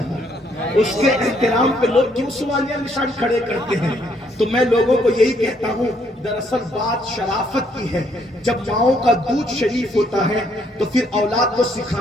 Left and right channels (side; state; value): both; normal; correlation 0.69